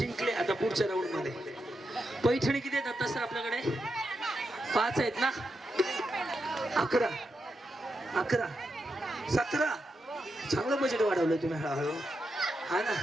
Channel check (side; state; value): both; normal; correlation 0.86